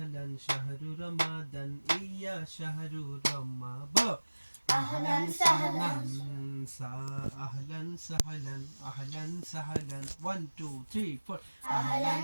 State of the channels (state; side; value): inverted; both; correlation -1.00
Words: শাহরু রমাদান ইয়া শাহরু রমাদান أهلا سهلا أهلا سهلا أهلا سهلا 1 2 3 4